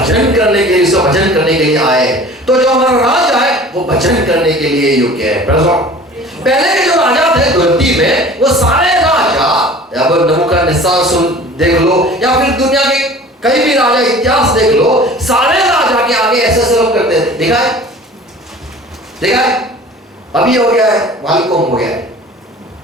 करने के लिए, उसका भजन करने के लिए आए। तो जो हमारा राजा है वो भजन करने के लिए योग्य है। पहले के जो राजा थे धरती में, वो सारे राजा, अब नबूकदनेस्सर सुन देख लो, या फिर दुनिया के कई भी राजा इतिहास देख लो, सारे राजा के आगे ऐसे ऐसे लोग करते थे। देखा है? अभी हो गया है वालकोम हो गया है,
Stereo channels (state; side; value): normal; both; correlation 0.44